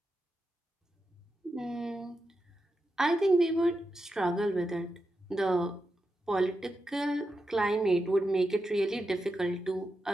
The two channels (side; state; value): both; normal; correlation 0.88